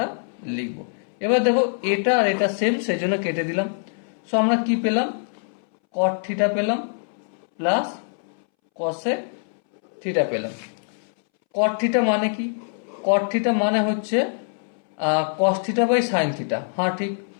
লিখবো। এবার দেখো এটা আর এটা সেম, সেজন্য কেটে দিলাম। সো আমরা কি পেলাম? কট থিটা পেলাম প্লাস কসেক থিটা পেলাম। কট থিটা মানে কি? কট থিটা মানে হচ্ছে cos theta by sine theta. হ্যাঁ ঠিক,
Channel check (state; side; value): silent; right; 63 dB below the other